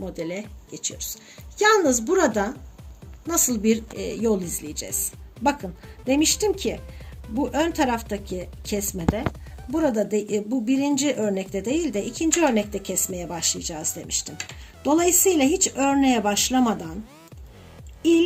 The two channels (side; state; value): both; identical; correlation 1.00